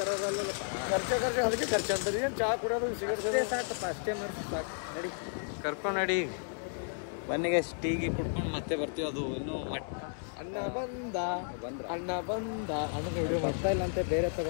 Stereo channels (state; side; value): silent; right; digital silence